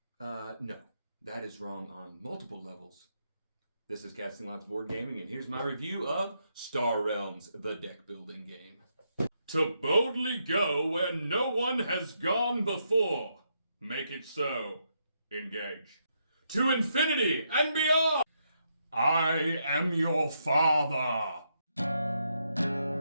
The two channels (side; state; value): both; inverted; correlation -0.79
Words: No, that is wrong on multiple levels. This is Casting Lots Board Gaming, and here's my review of Star Realms, the deck building game. To boldly go where no one has gone before. Make it so. Engage. To infinity and beyond. I am your father.